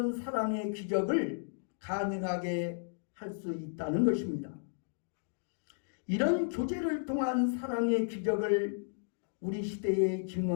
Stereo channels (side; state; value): right; silent; digital silence